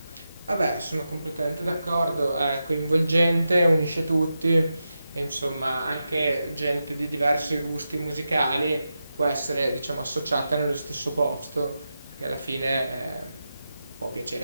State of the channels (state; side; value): inverted; both; correlation -0.89